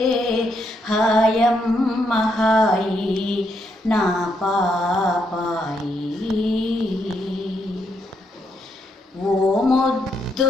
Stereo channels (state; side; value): normal; both; correlation 0.77